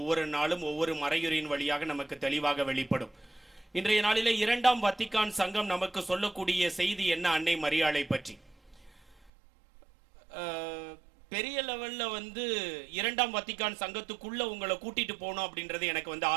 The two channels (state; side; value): drops out; left; at 9.3 s